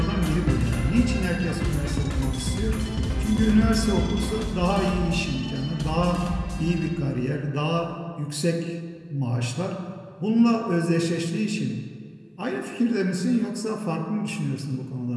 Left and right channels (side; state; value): both; identical; correlation 1.00